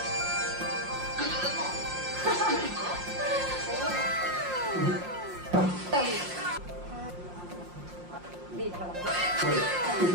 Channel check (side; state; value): left; late; 5.6 ms